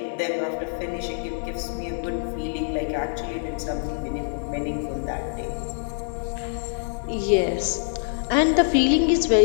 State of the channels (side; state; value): right; silent; digital silence